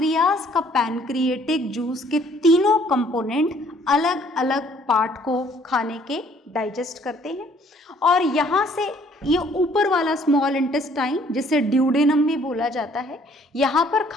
का पैनक्रिएटिक जूस के तीनों कंपोनेंट अलग अलग पार्ट को खाने के डाइजेस्ट करते हैं, और यहाँ से ये ऊपर वाला स्मॉल इंटेस्टाइन जिसे ड्यूडेनम भी बोला जाता है, यहाँ पर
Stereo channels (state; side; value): normal; both; correlation 0.60